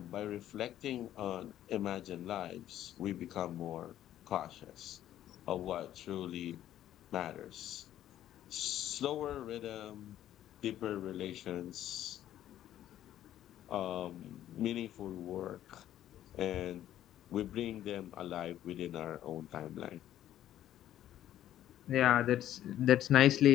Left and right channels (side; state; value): right; quieter; 12.1 dB